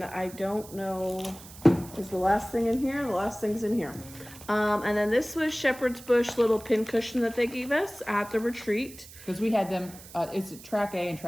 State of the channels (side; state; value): right; noise; hiss, 18 dB below the sound